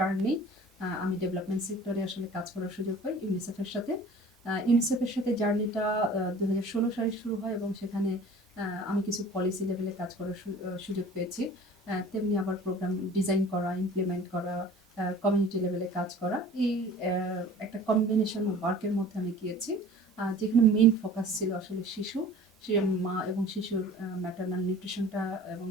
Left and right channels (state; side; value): normal; both; correlation 0.45